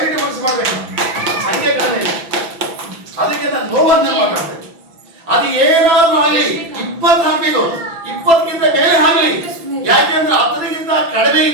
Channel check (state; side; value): late; left; 6.0 ms